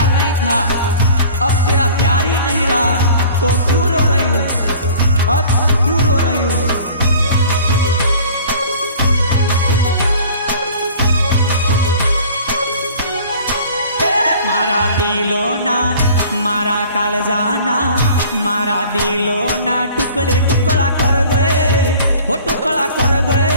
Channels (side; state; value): both; inverted; correlation -0.47